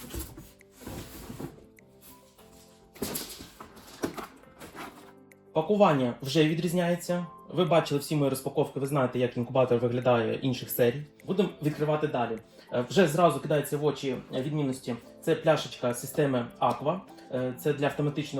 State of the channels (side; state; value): both; identical; correlation 1.00